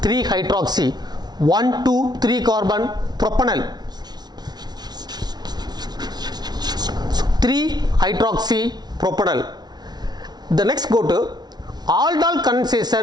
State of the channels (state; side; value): late; left; 0.19 ms